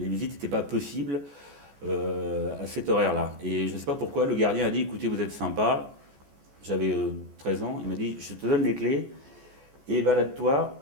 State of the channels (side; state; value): left; late; 14 ms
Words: visites n'étaient pas possibles à cette horaire-là. Et je ne sais pas pourquoi, le gardien a dit, écoutez, vous êtes sympa, j'avais 13 ans, il m'a dit, je te donne les clés et balade-toi